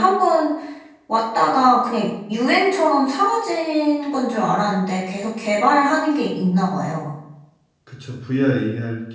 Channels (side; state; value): both; identical; correlation 1.00